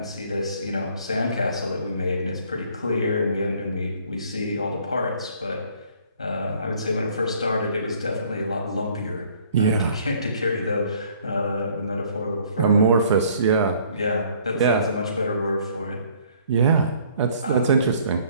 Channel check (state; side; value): inverted; both; correlation -0.59